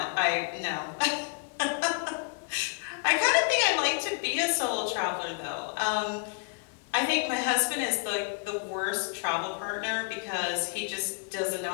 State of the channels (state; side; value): quieter; right; 38.8 dB